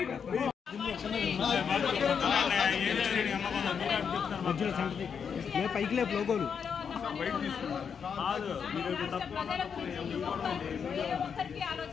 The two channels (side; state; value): right; quieter; 6.8 dB